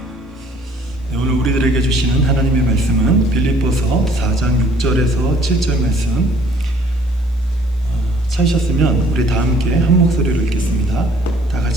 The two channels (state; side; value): normal; both; correlation 0.58